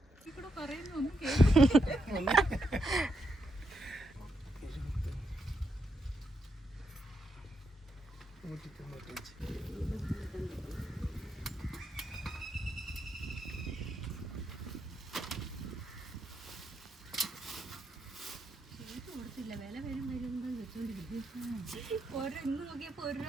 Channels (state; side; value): normal; both; correlation 0.81